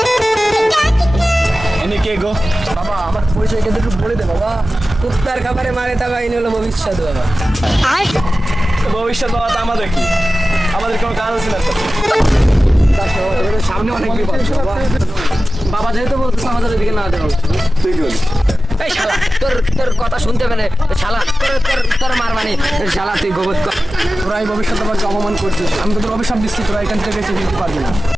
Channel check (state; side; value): normal; both; correlation 0.95